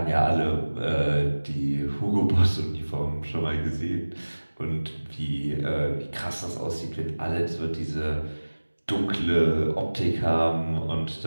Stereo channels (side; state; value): both; inverted; correlation -1.00